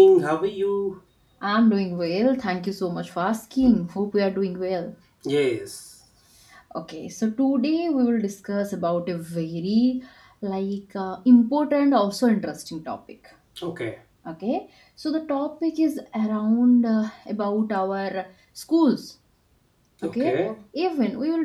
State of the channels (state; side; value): identical; both; correlation 1.00